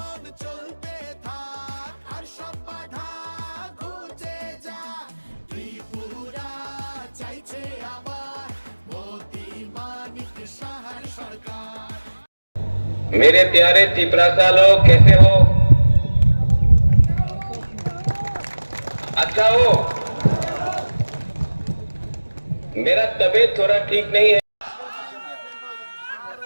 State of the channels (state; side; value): inverted; both; correlation -1.00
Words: मेरे प्यारे त्रिपुरा लोग कैसे हो? अच्छा हो? मेरा तबीयत थोड़ा ठीक नहीं है।